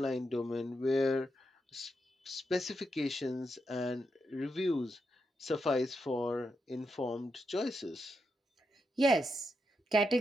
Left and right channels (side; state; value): both; normal; correlation 0.84